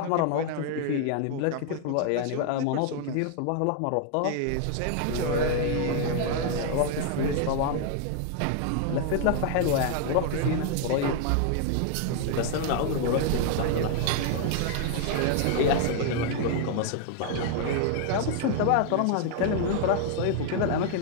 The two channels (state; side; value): different; both; correlation 0.00